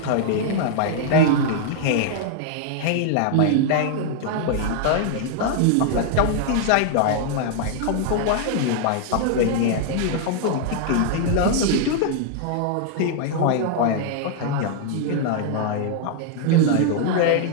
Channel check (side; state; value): both; different; correlation -0.01